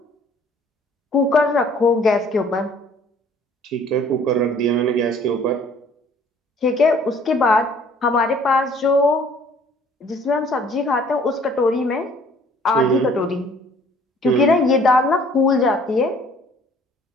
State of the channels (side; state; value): both; normal; correlation 0.56